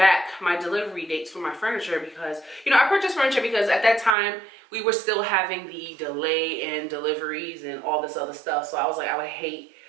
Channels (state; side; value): drops out; left; at 4.2 s